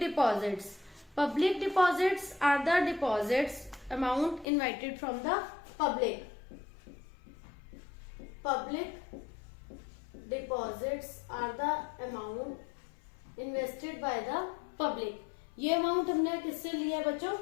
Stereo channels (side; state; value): right; drops out; at 4.5 s